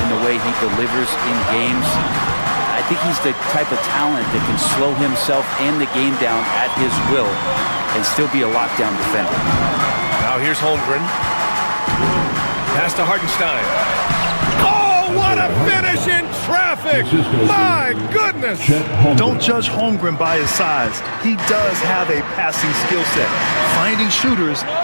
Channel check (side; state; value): both; inverted; correlation -1.00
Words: in the way he delivers in games? I think think he's the type of talent that can slow himself and the game down at his will and still be a lockdown defender. Now here's Holmgren. Pass to Hartenstein. Oh, what a finish in traffic! My goodness! Don't judge Holmgren by his size. He does have a passing skill set, finding shooters